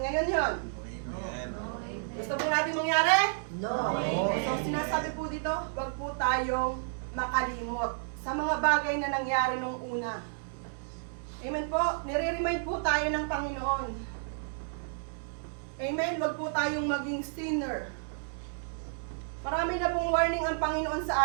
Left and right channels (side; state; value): left; silent; digital silence